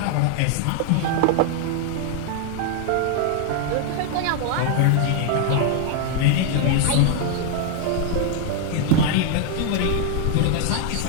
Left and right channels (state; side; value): different; both; correlation 0.00